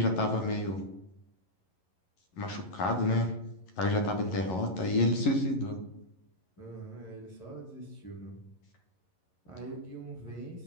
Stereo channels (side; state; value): right; late; 11 ms